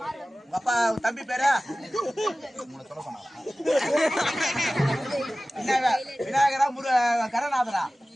உங்க அப்பா தம்பி பேரா? சொல்ல சொன்னாரா? விநாயகரா கணநாதரா?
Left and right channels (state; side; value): normal; both; correlation 0.97